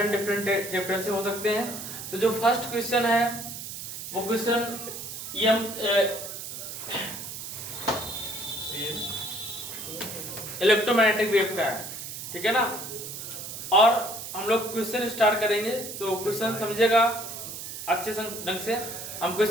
चैप्टर से हो सकते हैं। तो जो फर्स्ट क्वेश्चन है वो क्वेश्चन इलेक्ट्रोमैग्नेटिक वेव का है, ठीक है ना। और हम लोग क्वेश्चन स्टार्ट करेंगे तो क्वेश्चन समझेगा अच्छे ढंग से। हम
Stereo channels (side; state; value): right; noise; hiss, 8 dB below the sound